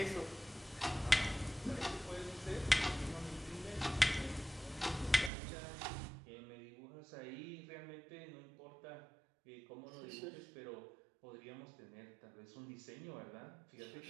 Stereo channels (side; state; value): left; drops out; at 5.3 s